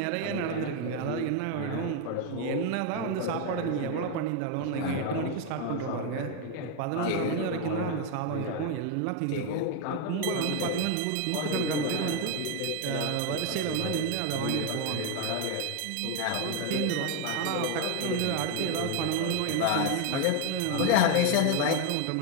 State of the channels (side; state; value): both; different; correlation 0.01